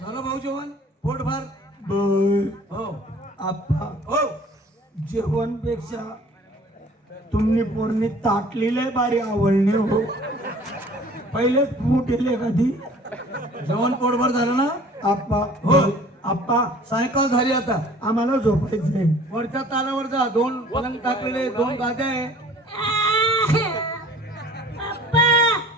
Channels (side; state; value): both; normal; correlation 0.49